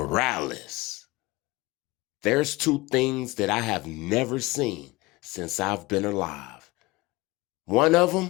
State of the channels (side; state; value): right; quieter; 21.7 dB